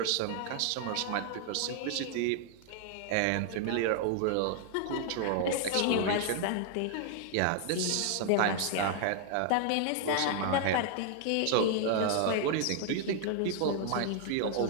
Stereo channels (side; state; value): both; different; correlation 0.00